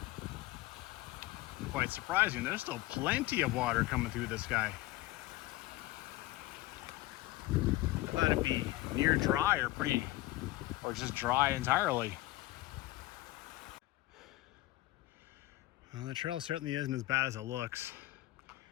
Quite surprising. There's still plenty of water coming through this guy. I thought it'd be near dry or just dry entirely. Well, the trail certainly isn't as bad as it looks.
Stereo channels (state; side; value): quieter; right; 18.0 dB